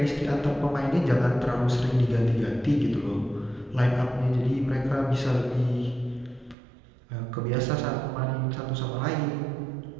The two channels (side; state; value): left; drops out; at 6.6 s